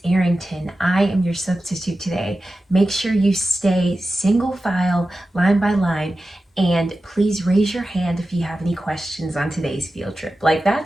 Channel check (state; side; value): normal; both; correlation 0.94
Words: Arrington. I am your substitute today. Make sure you stay single file, line by line, and please raise your hand if you have any questions on today's field trip. Like,